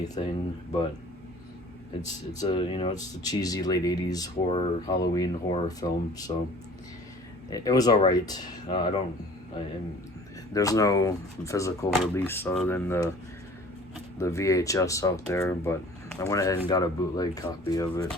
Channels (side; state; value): both; normal; correlation 0.49